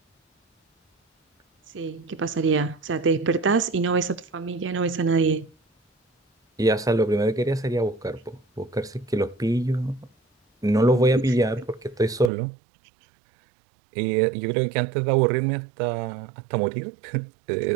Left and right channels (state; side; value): drops out; left; at 12.3 s